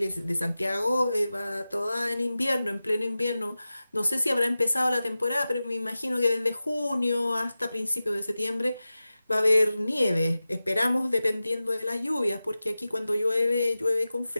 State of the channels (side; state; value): both; inverted; correlation -0.95